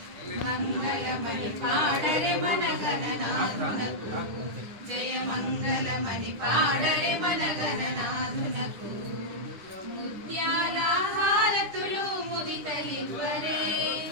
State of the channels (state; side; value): late; left; 9.9 ms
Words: మంగళమణి పాడరే మన గణనాథునకు, జయ మంగళమణి పాడరే మన గణనాథునకు. ముత్యాల హారతులు ముదితలివ్వరే,